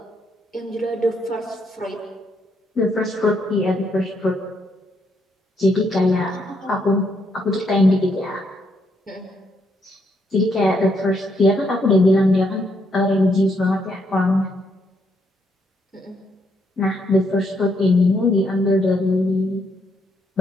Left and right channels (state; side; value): normal; both; correlation 0.75